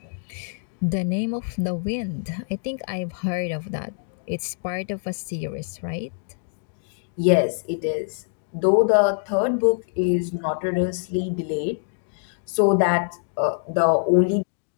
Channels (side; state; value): right; silent; digital silence